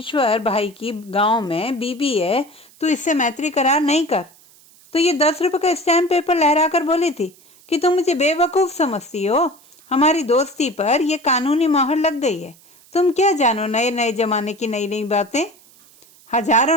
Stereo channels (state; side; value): noise; right; hiss, 27 dB below the sound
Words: भाई की गांव में बीबी है, तू इससे मैत्री करार नहीं कर। तो ये 10 रुपए का स्टैम्प पेपर लहरा कर बोली थी कि तुम मुझे बेवकूफ समझती हो। हमारी दोस्ती पर यह कानूनी मोहर लग गई है। तुम क्या जानो नए नए जमाने की नई नई बातें।